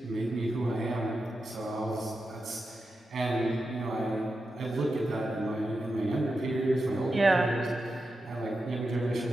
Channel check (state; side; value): normal; both; correlation 0.89